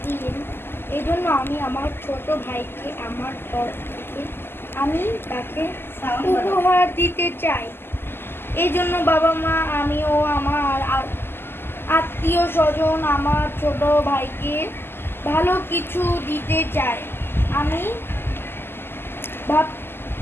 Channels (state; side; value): late; right; 0.11 ms